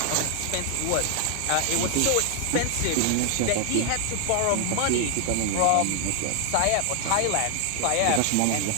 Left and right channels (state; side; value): different; both; correlation 0.00